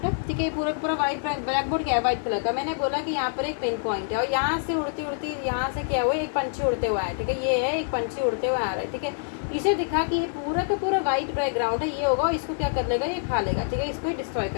है, ठीक है, ये पूरा पूरा वाइट ब्लैक बोर्ड क्या है, वाइट कलर का। मैंने बोला कि यहाँ पर एक पिन पॉइंट है और यहाँ से उड़ती उड़ती यहाँ से क्या हुआ, एक पंछी उड़ते हुआ है, ठीक है, ये है एक पंछी उड़ते हुए आ रहा है, ठीक है। इसे दिखा कि ये पूरा का पूरा वाइट बैकग्राउंड है, ये होगा, इसको क्या कर लेगा, ये खा लेगा, ठीक है, इसको डिस्ट्रॉय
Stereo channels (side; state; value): right; silent; 61 dB below the other